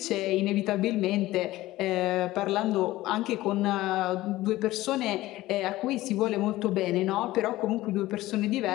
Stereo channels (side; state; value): right; quieter; 17.0 dB